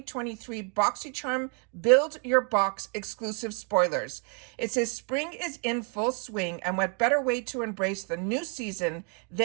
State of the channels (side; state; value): left; quieter; 36.3 dB